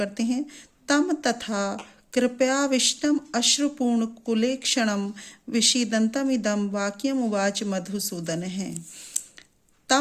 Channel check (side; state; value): both; identical; correlation 1.00